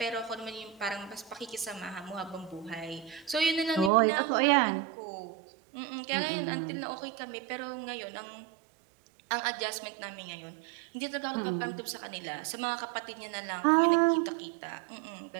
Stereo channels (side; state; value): left; drops out; at 3.9 s